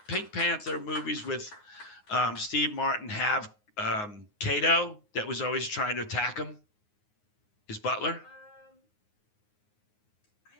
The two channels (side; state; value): right; late; 9.5 ms